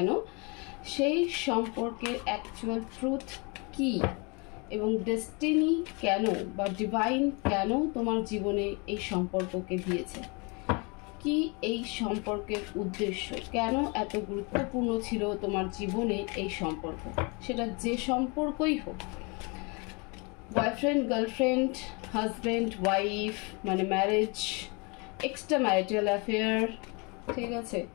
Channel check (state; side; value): quieter; right; 30.9 dB